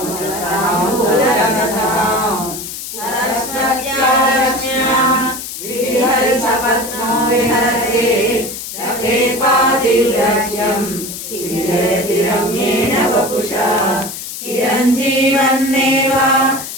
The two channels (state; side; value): noise; left; hiss, 9 dB below the sound